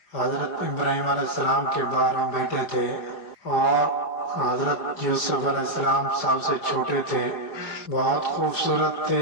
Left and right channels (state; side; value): late; right; 5.2 ms